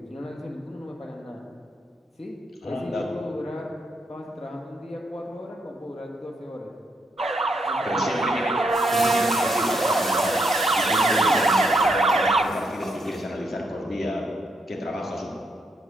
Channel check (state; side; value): normal; both; correlation 0.77